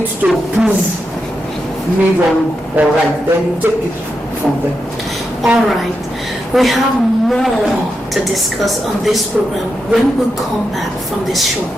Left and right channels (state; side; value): normal; both; correlation 0.86